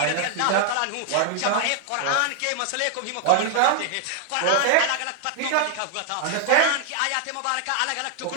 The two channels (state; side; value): different; both; correlation 0.00